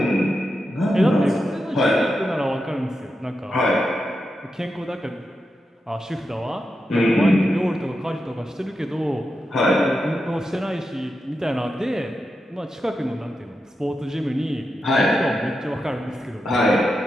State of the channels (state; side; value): normal; both; correlation 0.88